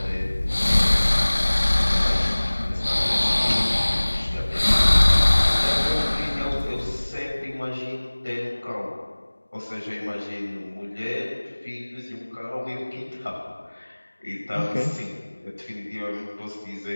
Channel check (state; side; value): inverted; both; correlation -1.00